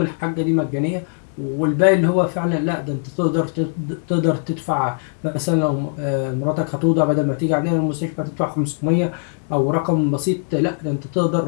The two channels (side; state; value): right; silent; digital silence